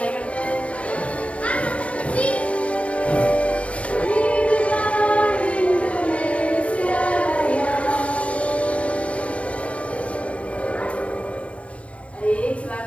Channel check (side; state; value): right; late; 0.063 ms